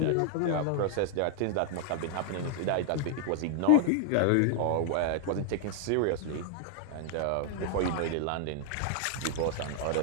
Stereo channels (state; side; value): different; both; correlation 0.00